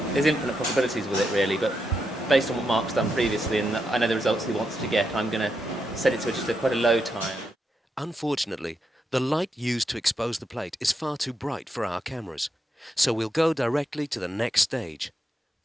there's infinite possibilities with it really, but based on what Mark's done previously and I know the results he wants to get, I'm going to set it to just quite a low time. Unfortunately, the light used to expose the plate is far too bright for our cameras, so we'll go directly to the next stage,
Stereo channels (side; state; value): both; normal; correlation 0.83